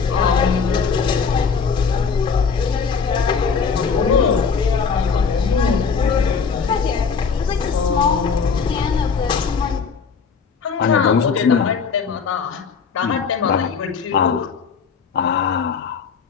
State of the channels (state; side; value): quieter; right; 5.7 dB